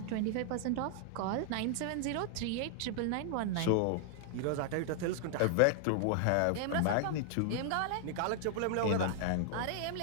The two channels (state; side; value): different; both; correlation 0.00